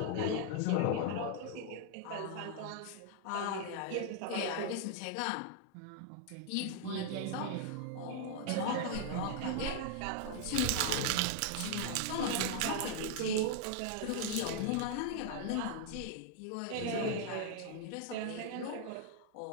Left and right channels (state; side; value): different; both; correlation 0.00